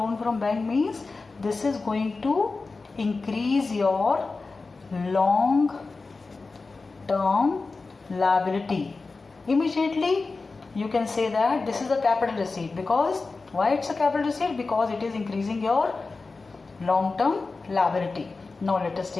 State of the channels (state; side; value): quieter; right; 3.9 dB